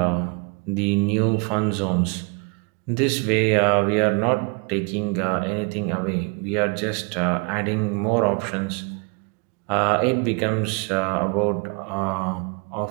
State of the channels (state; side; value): quieter; left; 34.1 dB